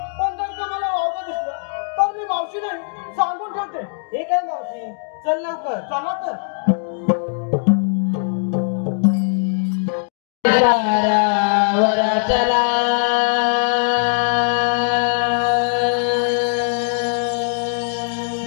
पण जर का मला वावगं दिसलं तर मी मावशी नाही सांगून ठेवते. हे काय मावशी चल लवकर. चला तर. पारावर चला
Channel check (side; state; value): right; silent; digital silence